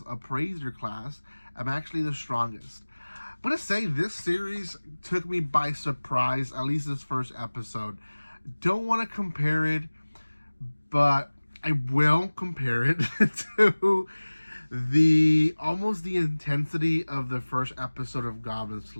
appraiser class. I'm actually the strongest. I'm going to say this series took me by surprise, at least this first episode. Don't want to compare it, but I will compare it to almost the intensity of the first episode of Goblin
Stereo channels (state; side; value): inverted; both; correlation -1.00